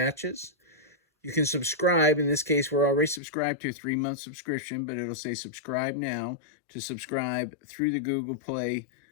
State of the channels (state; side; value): drops out; right; at 3.2 s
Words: You can subscribe. In this case, we're already subscribed to a 3-month subscription, but it'll say subscribe now to subscribe through the Google Play